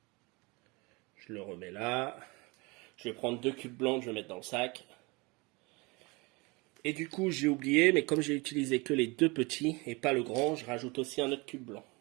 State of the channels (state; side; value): quieter; left; 26.4 dB